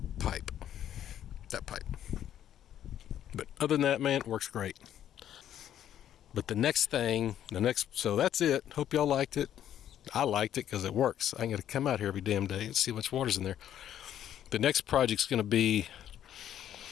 pipe. But other than that, man, it works great. But so that's it. Hope y'all liked it. I liked it because it works. I got to come out here every damn day and see how much water's in there. The next project's going to be,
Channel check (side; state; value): right; quieter; 10.7 dB